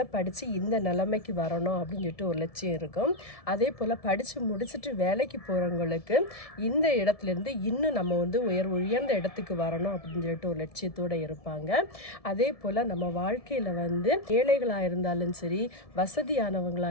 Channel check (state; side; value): late; right; 1.7 ms